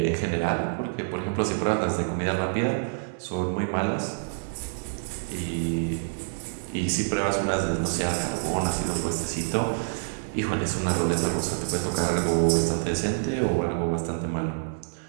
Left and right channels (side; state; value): left; silent; 58 dB below the other